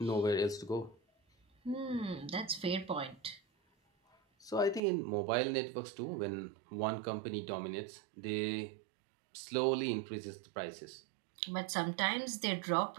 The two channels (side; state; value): left; drops out; at 4.8 s